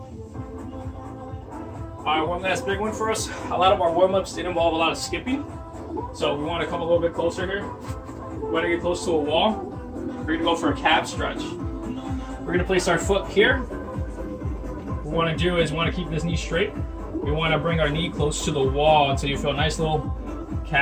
All right, one last big one for us. A lot of our warm-ups did involve a lot of skipping. So we want to come a little bit closer here. We want to get close to a wall. We're going to go for a calf stretch. We're going to place our foot here. What we want to do is we want to keep this knee straight. We want to bring our knee close to the wall until you feel a nice little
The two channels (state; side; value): identical; both; correlation 1.00